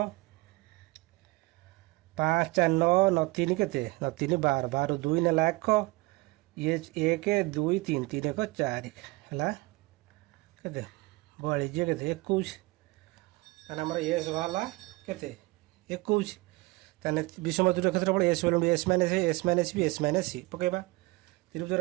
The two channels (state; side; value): quieter; left; 22.9 dB